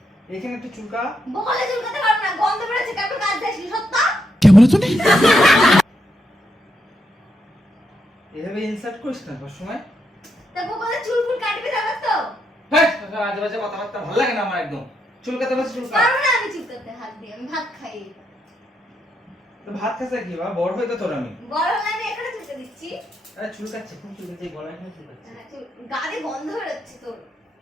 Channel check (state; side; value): normal; both; correlation 0.80